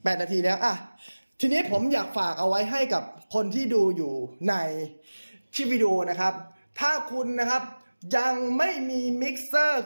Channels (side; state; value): both; inverted; correlation -1.00